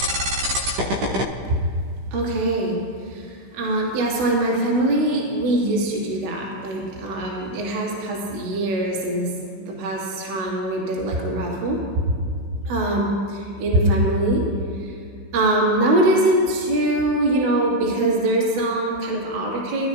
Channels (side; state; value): left; late; 15 ms